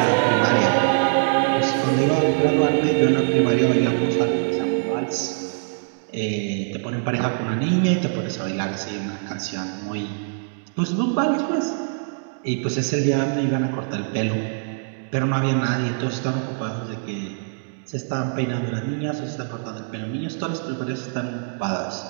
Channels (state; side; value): silent; left; digital silence